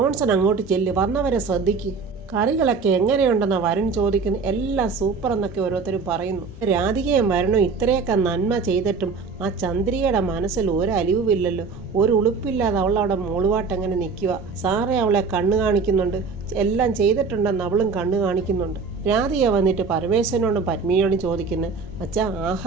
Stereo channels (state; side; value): quieter; left; 4.8 dB